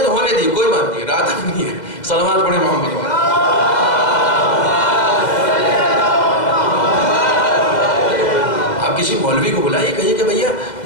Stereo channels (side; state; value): right; late; 2.0 ms